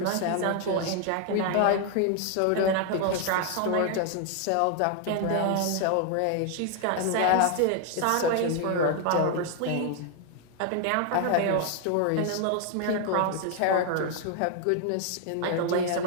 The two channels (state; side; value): different; both; correlation 0.00